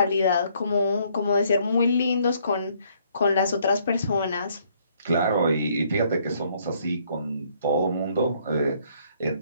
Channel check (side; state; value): both; inverted; correlation -0.66